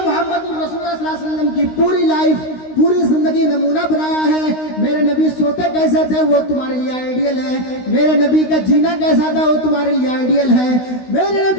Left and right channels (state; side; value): late; right; 16 ms